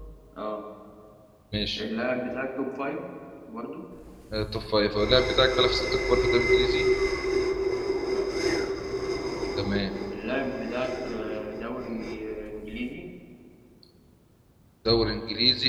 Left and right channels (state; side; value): identical; both; correlation 1.00